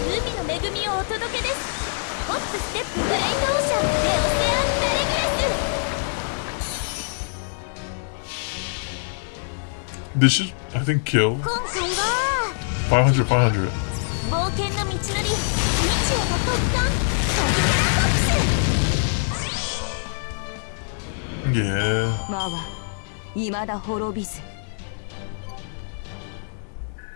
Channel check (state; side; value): silent; right; digital silence